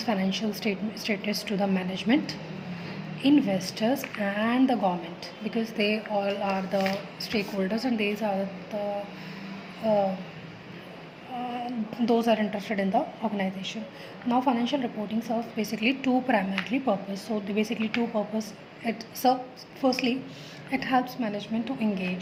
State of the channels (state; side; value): identical; both; correlation 1.00